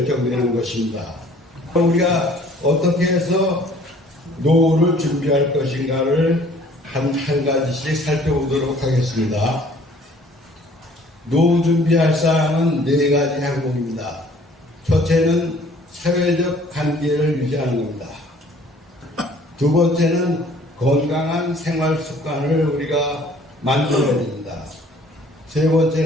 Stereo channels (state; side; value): normal; both; correlation 0.55